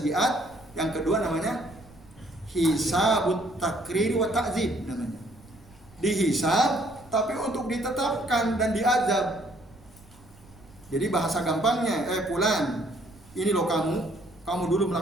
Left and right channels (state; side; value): noise; right; rumble, 25 dB below the sound